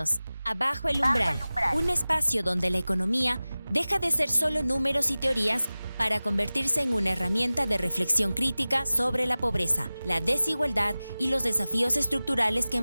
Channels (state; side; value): inverted; both; correlation -0.97